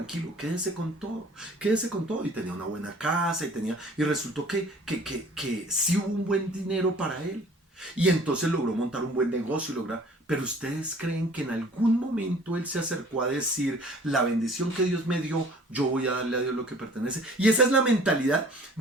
quédese con todo y tenía una buena casa y resultó que sí hubo un buen dinero para él y entonces logró montar un buen negocio pero ustedes creen que en algún momento él se acercó a decir la bendición que Dios me dio, yo voy a darle a Dios lo que pertenece. Y esa es la mentalidad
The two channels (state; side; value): normal; both; correlation 0.51